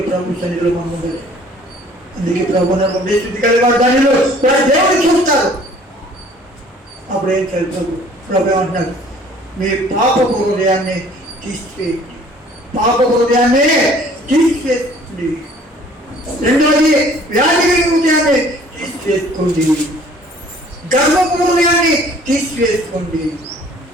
ప్రభు సన్నిధిలో మనం ఉండదు. అందుకే ప్రభు నన్ను శుద్ధి కలిగి వారు ధన్యులు, వారు దేవుడు చూస్తారు. అప్పుడు ఏం చేయాలి? ప్రభు ఏమంటున్నారు? మీ పాప హృదయాన్ని తీసివేయండి, పాప హృదయాన్ని తీసివేయండి. రెండోది, వ్యాధి కలిగిన హృదయాన్ని తీసివేసుకోండి, గర్వపు హృదయాన్ని తీసివేసుకోండి.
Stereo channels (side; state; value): both; normal; correlation 0.54